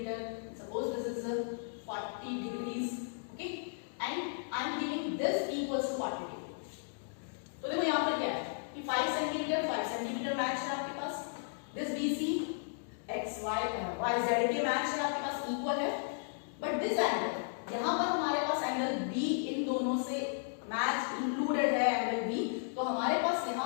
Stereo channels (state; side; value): silent; right; digital silence